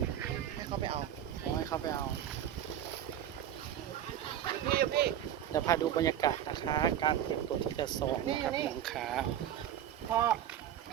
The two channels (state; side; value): quieter; left; 10.7 dB